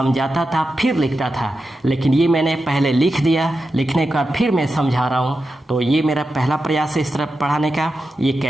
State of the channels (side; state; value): both; normal; correlation 0.90